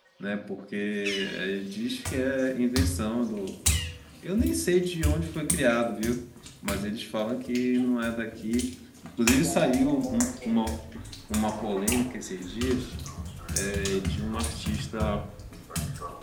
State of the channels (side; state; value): both; identical; correlation 1.00